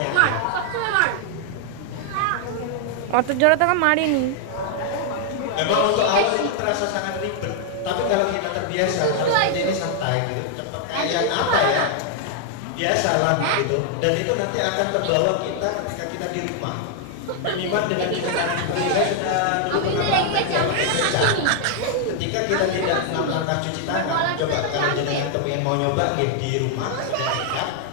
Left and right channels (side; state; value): both; different; correlation 0.00